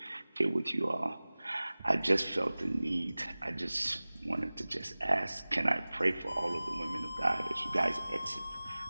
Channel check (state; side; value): inverted; both; correlation -0.99